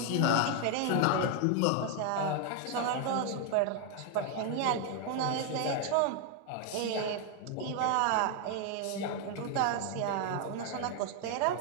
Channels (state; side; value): different; both; correlation 0.01